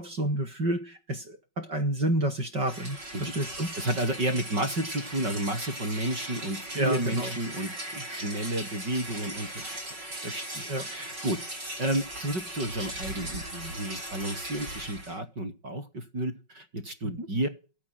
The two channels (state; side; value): late; left; 5.3 ms